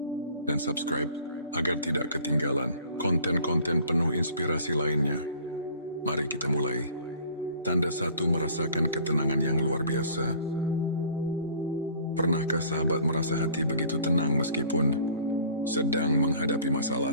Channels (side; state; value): both; inverted; correlation -0.50